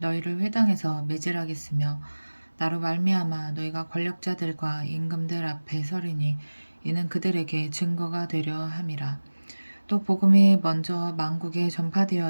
회당에서 매질하겠으며 나로 말미암아 너희가 권력자들과 임금들 앞에 서리니 이는 그들에게 증거가 되려 함이라. 또 복음이 먼저 만국에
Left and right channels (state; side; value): inverted; both; correlation -1.00